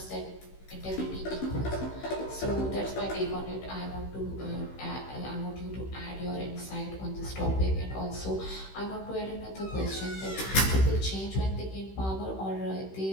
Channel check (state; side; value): late; right; 16 ms